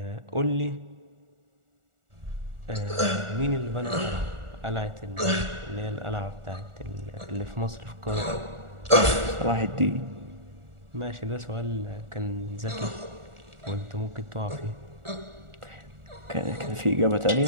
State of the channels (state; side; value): late; left; 1.4 ms